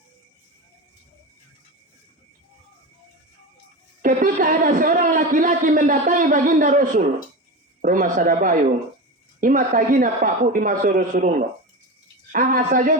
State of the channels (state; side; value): normal; both; correlation 0.24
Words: Ketika ada seorang laki-laki mendatangi baginda Rasul, rumah Sadabayung, ima tagina Pak Bu di masa Rasulullah. Aha